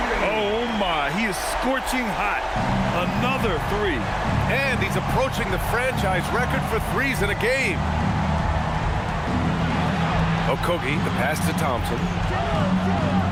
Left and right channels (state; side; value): identical; both; correlation 1.00